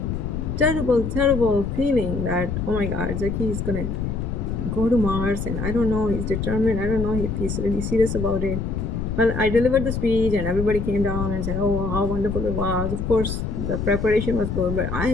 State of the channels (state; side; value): noise; left; rumble, 3 dB below the sound